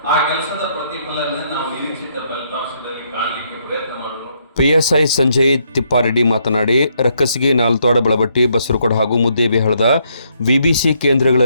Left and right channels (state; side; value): inverted; both; correlation -0.74